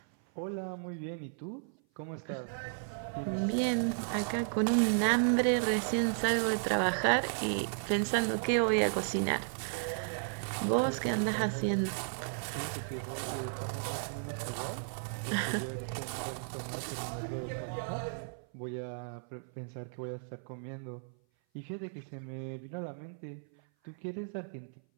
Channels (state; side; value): silent; left; 55 dB below the other